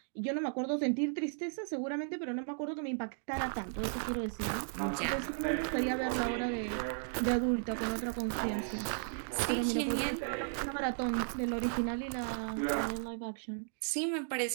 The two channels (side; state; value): left; silent; digital silence